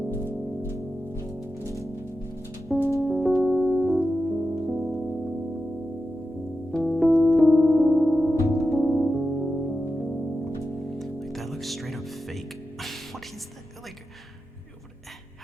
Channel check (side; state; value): both; normal; correlation 0.90